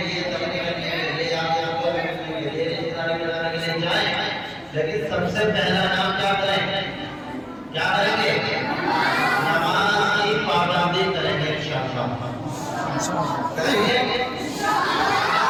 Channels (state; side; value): identical; both; correlation 1.00